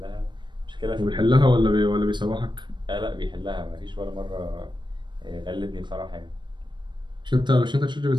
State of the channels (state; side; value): late; left; 0.22 ms